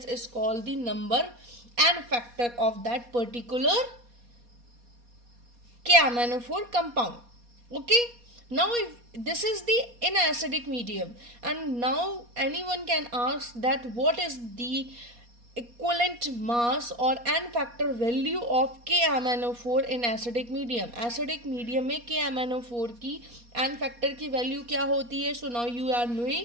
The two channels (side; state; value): left; late; 4.2 ms